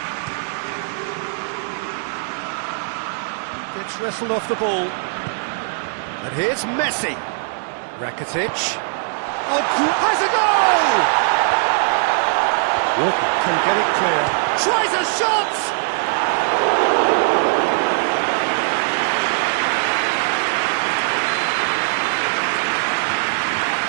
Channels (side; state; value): left; silent; digital silence